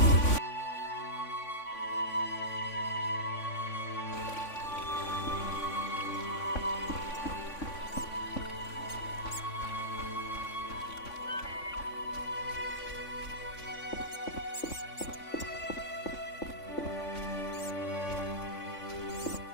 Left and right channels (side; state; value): right; late; 3.5 ms